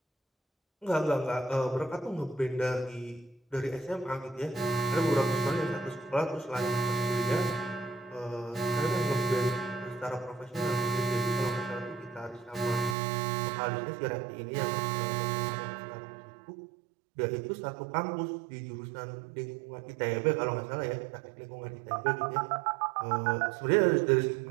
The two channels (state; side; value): drops out; left; at 13.0 s